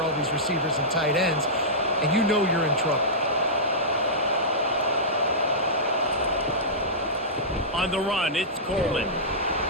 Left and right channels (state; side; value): normal; both; correlation -0.15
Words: these receivers and tight ends, and you know you're in trouble. On the run, it's Coleman.